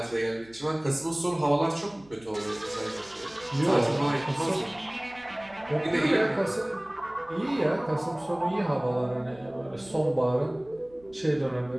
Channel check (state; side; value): noise; right; hum, 26 dB below the sound